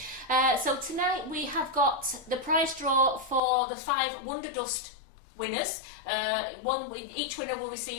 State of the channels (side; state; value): right; drops out; at 3.4 s